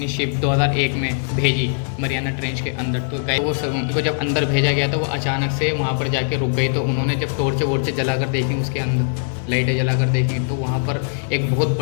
शिप 2001 में भेजी मरियाना ट्रेंच के अंदर। तो गाइस वो सब उनको जब अंदर भेजा गया तो वो अचानक से वहाँ पर जाके रुक गई। तो उन्होंने जब टॉर्च जला कर देखी, उसके अंदर लाइटें जला कर देखी, तो वहाँ पर एक बहुत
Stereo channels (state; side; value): silent; right; digital silence